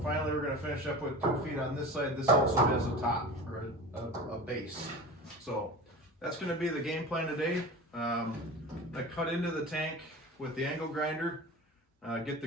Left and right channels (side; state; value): both; normal; correlation 0.33